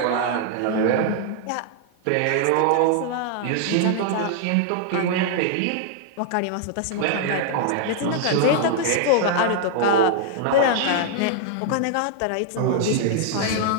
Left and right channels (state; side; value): different; both; correlation -0.01